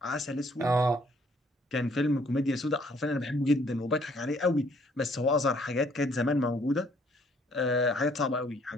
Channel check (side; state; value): both; normal; correlation 0.64